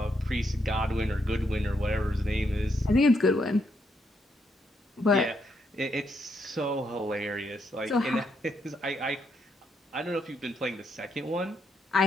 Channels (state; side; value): normal; both; correlation 0.77